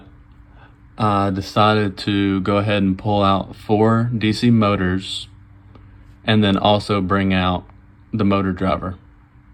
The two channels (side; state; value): both; identical; correlation 1.00